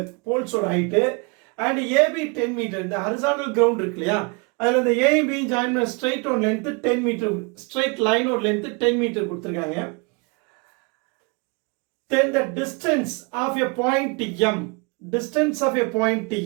போல்ஸோட ஹைட், அண்ட் AB 10 மீட்டர். இந்த ஹரிசாண்டல் கிரவுண்ட் இருக்கு இல்லையா, அதுல இந்த A B ஜாயின் பண்ண ஸ்ட்ரைட் ஓட லென்த் 10 மீட்டர், ஸ்ட்ரைட் லைனோட லென்த் 10 மீட்டர் கொடுத்திருக்காங்க. Then the distance of a point M, distance of a point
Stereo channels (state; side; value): quieter; left; 31.1 dB